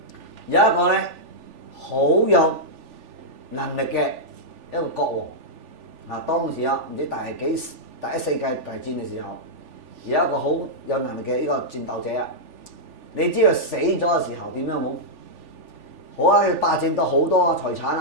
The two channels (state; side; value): late; left; 3.4 ms